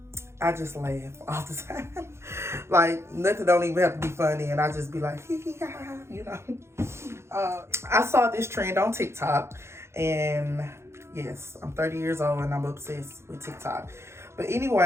I just laugh all the time. Like, nothing don't even have to be funny, and I just be like, I saw this trend on TikTok, and yes, I'm 30 years old and I'm obsessed with TikTok. But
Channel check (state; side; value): late; left; 0.13 ms